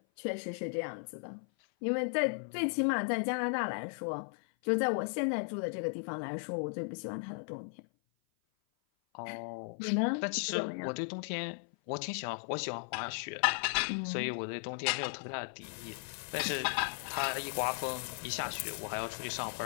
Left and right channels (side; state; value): right; silent; 54 dB below the other